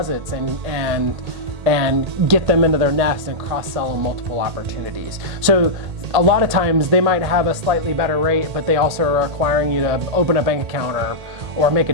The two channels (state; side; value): late; left; 1.8 ms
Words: and get them into their nest and cross-sell them multiple opportunities. So a lot of times they might have a slightly better rate, but they also are requiring you to open a bank account or make a